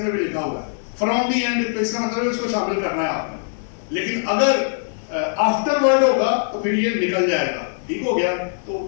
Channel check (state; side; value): silent; right; digital silence